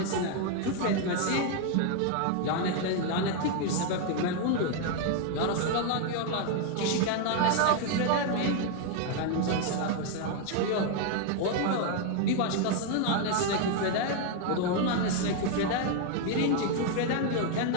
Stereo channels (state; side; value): different; both; correlation 0.01